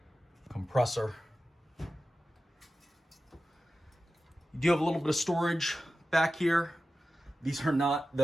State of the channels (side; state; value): both; normal; correlation 0.94